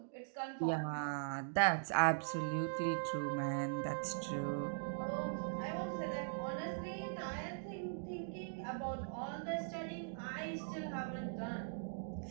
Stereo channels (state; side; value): silent; left; digital silence